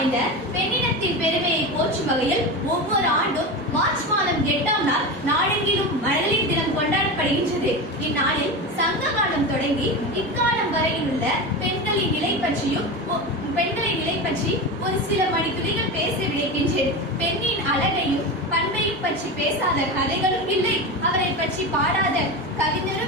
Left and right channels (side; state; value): both; normal; correlation 0.23